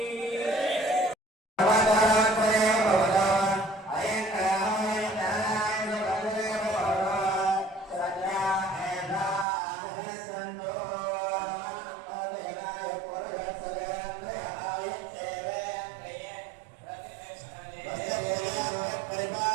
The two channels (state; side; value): drops out; left; at 9.5 s